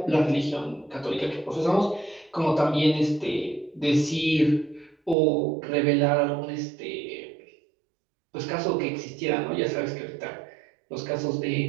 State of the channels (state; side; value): drops out; left; at 5.2 s